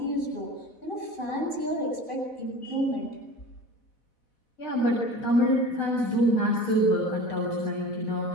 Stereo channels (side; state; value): right; late; 4.1 ms